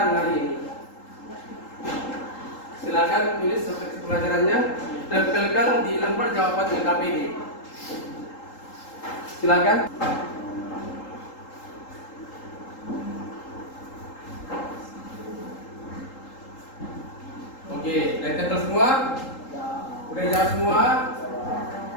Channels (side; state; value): right; late; 3.8 ms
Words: hari ini. Silakan tulis refleksi pembelajarannya, tempelkan di lembar jawaban LKPD. Silakan. Oke, udah tempel semua? Udah jawab semua?